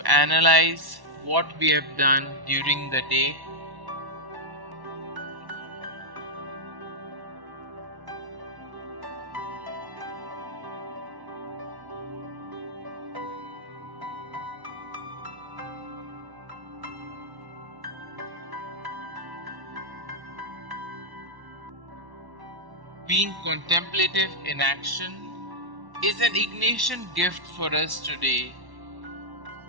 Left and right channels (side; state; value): left; late; 1.1 ms